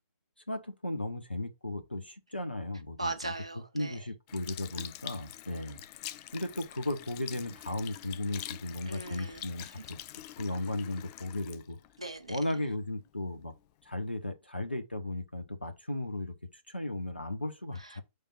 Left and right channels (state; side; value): inverted; both; correlation -0.82